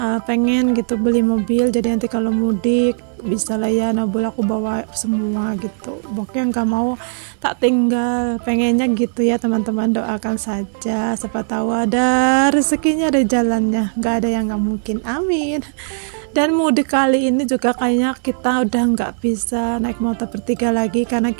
pengen gitu beli mobil, jadi nanti kalau mudik bisa lah ya nabul aku bawa semua gitu. Pokoknya nggak mau tak tinggal, pengennya gitu ya teman-teman, doakan saja, siapa tahu ada rezekinya, ada jalannya, nggak ada yang nggak mungkin, amin. Dan mudik kali ini juga kayaknya kita udah nggak bisa naik motor bertiga lagi, karena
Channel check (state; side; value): silent; left; 63 dB below the other